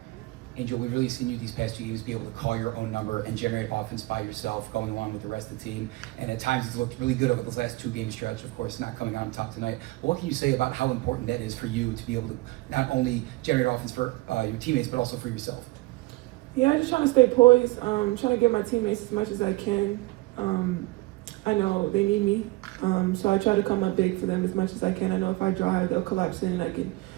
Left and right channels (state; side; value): quieter; left; 21.2 dB